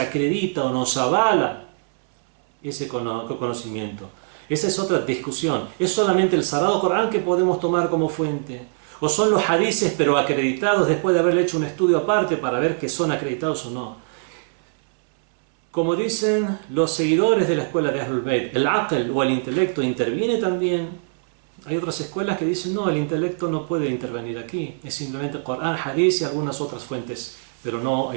o nos avala ese conocimiento? Esa es otra discusión. ¿Es solamente el Sagrado Corán que podemos tomar como fuente? ¿O son los hadices pero acreditados después de haber hecho un estudio aparte para ver que son acreditados o no? Como dicen los seguidores de la escuela de Ahlul Bayt, el aql o el intelecto interviene también. Hay otras escuelas que dicen no, el intelecto no puede intervenir aquí, es simplemente Corán, hadith y algunas otras fuentes, pero no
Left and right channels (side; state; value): left; silent; 64 dB below the other